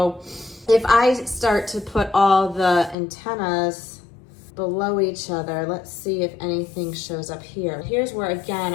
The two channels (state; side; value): drops out; right; at 3.0 s